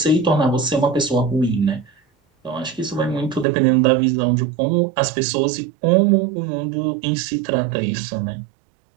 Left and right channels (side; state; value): left; drops out; at 3.5 s